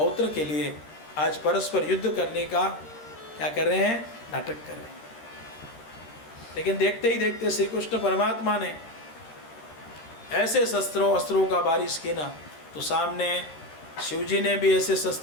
के लिए आज परस्पर युद्ध करने का क्या कर रहे हैं, नाटक कर रहे हैं। लेकिन देखते ही देखते श्री कृष्ण परमात्मा ने ऐसे शस्त्रों अस्त्रों का बारिश की ना, तो सामने शिवजी ने भी ऐसे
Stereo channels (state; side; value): late; right; 13 ms